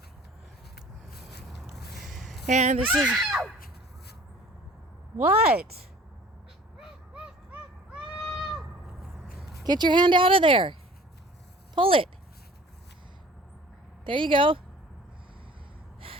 And this is... What? Get your hand out of there. Pull it. There you go.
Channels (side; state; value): both; normal; correlation 0.48